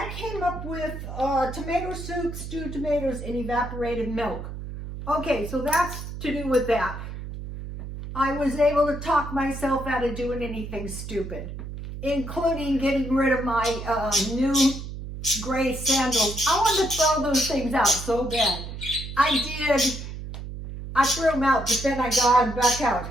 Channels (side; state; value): right; noise; hum, 9 dB below the sound